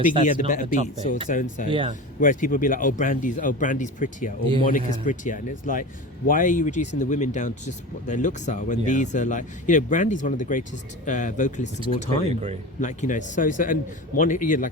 Biggie had the that's better not beats, topic. or so and so. Yeah. Whereas people would be like, Brandy's prettier, or Yeah. Monica's prettier, and it's like, why are you reducing the women down to just what their looks are when Yeah. these are like, you know, Brandy's one of the greatest vocalists of all completely time. agree. Like, you know, so and Monica, yeah,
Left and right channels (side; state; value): both; normal; correlation 0.30